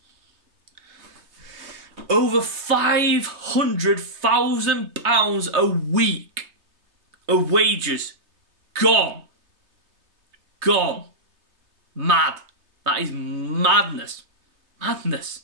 Over £500,000 a week of wages gone. Gone. Mad. That is madness. Madness.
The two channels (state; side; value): late; left; 3.3 ms